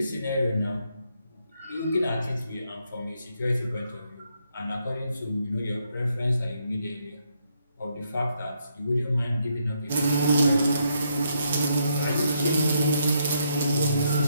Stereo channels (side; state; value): both; inverted; correlation -0.76